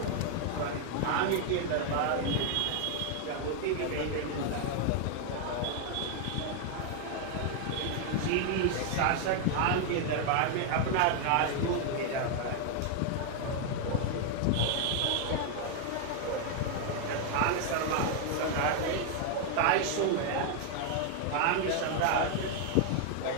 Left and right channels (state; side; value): different; both; correlation 0.00